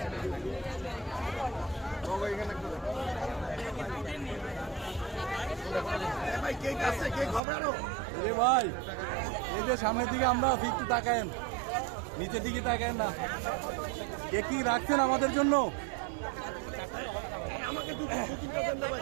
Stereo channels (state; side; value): drops out; left; at 7.4 s